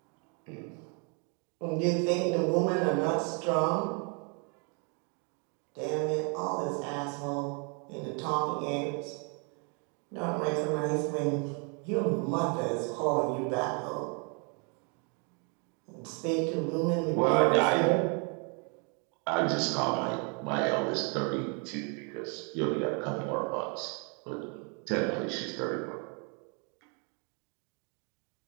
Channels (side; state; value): left; quieter; 36.4 dB